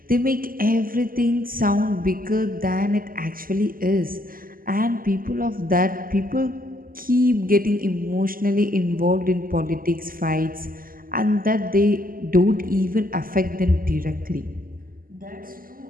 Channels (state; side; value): late; left; 0.41 ms